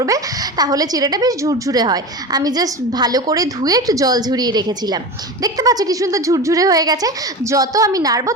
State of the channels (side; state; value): both; normal; correlation 0.27